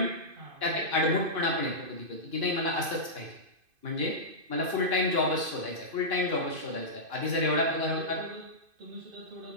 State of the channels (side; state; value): left; late; 2.5 ms